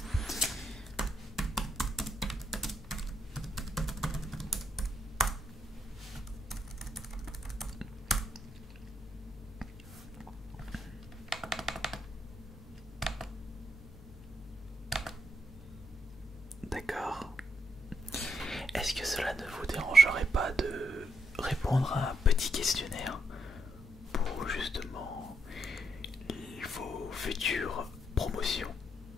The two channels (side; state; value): both; normal; correlation 0.78